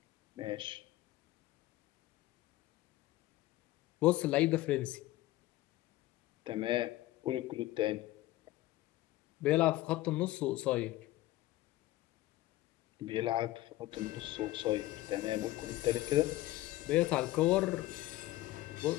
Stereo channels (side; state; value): right; quieter; 16.8 dB